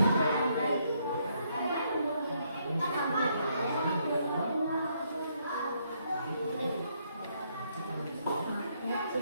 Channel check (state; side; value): inverted; both; correlation -0.73